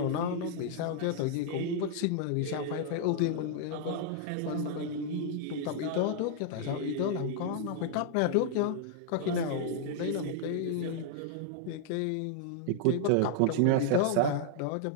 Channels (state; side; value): different; both; correlation 0.00